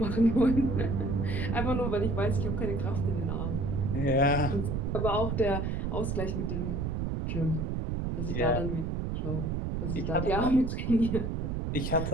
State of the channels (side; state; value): right; noise; rumble, 1 dB below the sound